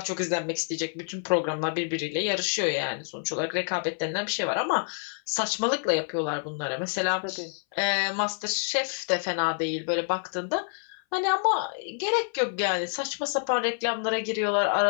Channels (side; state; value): right; silent; 59 dB below the other